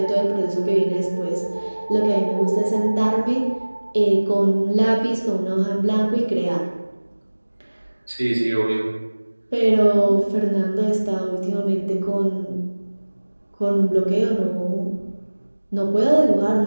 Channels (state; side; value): inverted; both; correlation -1.00